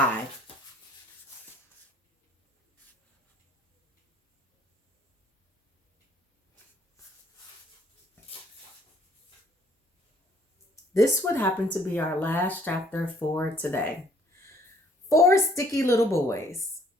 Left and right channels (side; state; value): both; normal; correlation 0.61